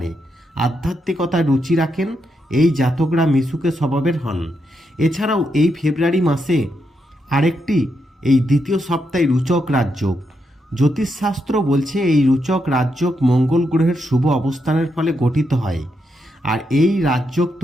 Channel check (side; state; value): both; normal; correlation 0.82